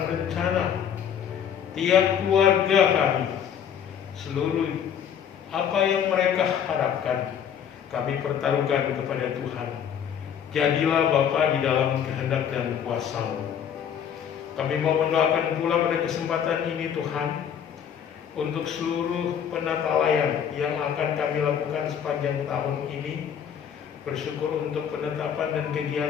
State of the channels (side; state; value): right; quieter; 8.5 dB